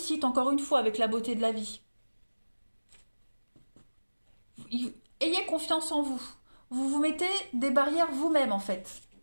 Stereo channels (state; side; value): inverted; both; correlation -1.00